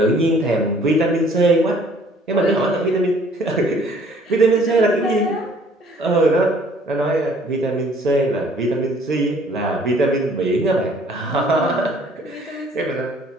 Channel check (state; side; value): normal; both; correlation 0.57